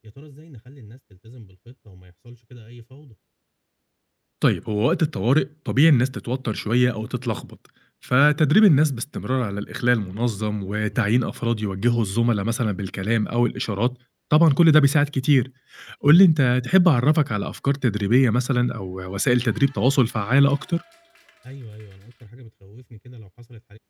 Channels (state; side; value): identical; both; correlation 1.00